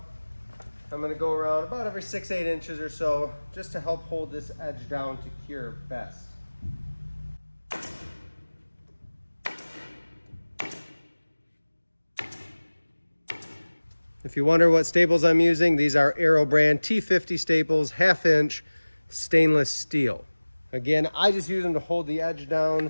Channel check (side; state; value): both; inverted; correlation -1.00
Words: I'm gonna go around about every 6-8 inches or so, just to help hold this edge down to cure best. If you wonder what staples I'm using, these are Aero brand T50 staples, 1/2 inch stainless steel. Again, I just use them to hold the edge down